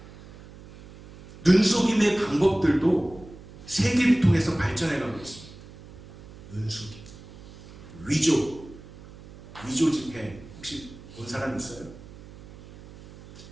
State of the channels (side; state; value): right; noise; hum, 18 dB below the sound